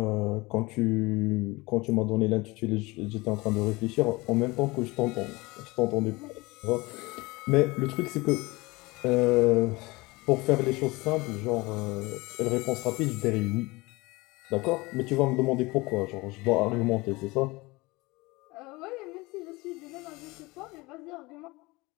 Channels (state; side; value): quieter; right; 23.0 dB